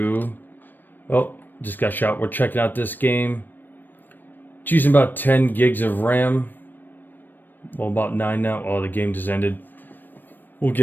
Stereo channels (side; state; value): right; late; 0.092 ms